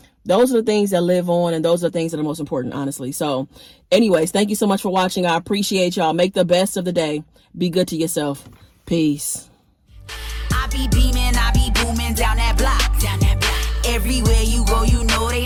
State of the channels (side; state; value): both; identical; correlation 1.00